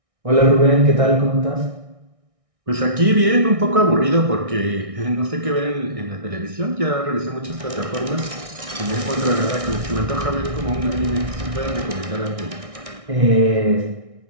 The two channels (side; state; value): left; late; 1.6 ms